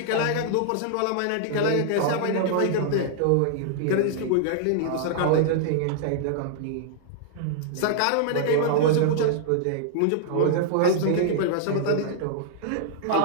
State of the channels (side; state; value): both; different; correlation -0.01